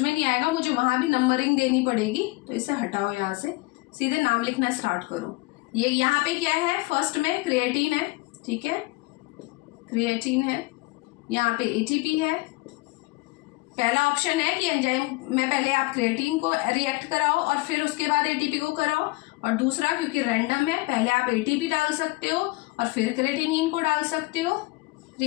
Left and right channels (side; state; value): right; quieter; 23.2 dB